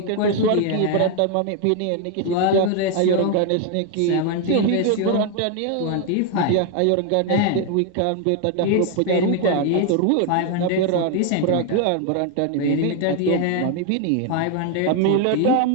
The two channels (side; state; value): both; different; correlation 0.01